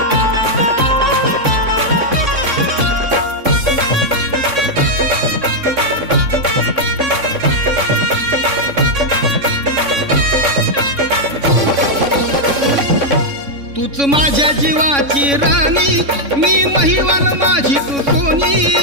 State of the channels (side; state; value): left; late; 3.6 ms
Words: तूच माझ्या जीवाची राणी, मी महिवान माझी तू सोनी.